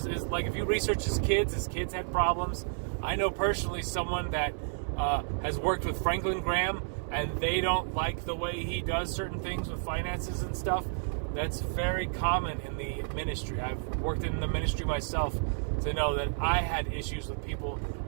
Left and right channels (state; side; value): silent; left; digital silence